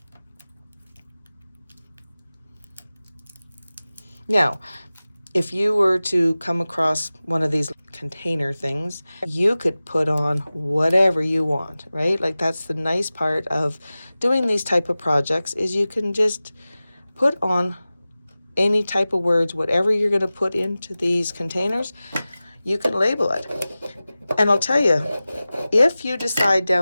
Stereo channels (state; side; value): inverted; both; correlation -0.97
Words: Now, if you were to come across one of these container things, you could put on whatever you want, right? Like that's the nice part of doing these type of projects is you can just put on any type of words, whatever you're going to put into these containers, you can label it. And I'll tell you, if you decide